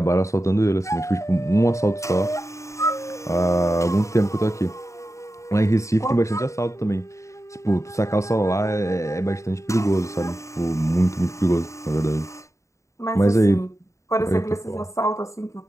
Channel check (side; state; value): right; late; 0.15 ms